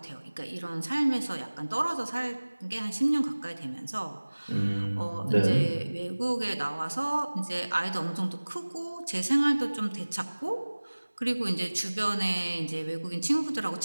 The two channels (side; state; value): both; inverted; correlation -1.00